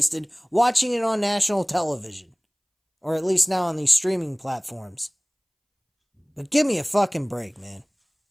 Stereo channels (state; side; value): identical; both; correlation 1.00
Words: watching it on national television. Or at least now on these streaming platforms. But give me a fucking break, man.